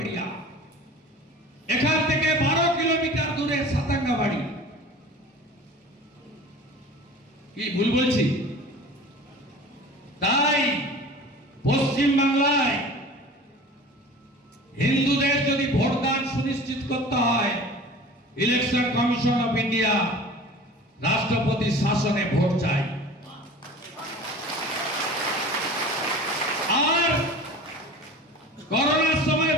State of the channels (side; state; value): both; normal; correlation 0.40